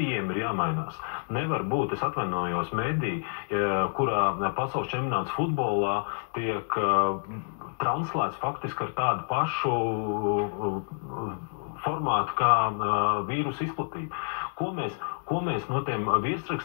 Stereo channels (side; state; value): right; silent; digital silence